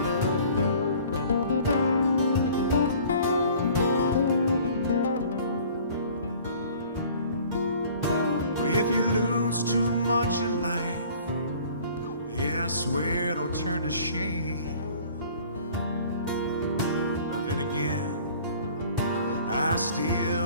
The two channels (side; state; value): both; inverted; correlation -0.50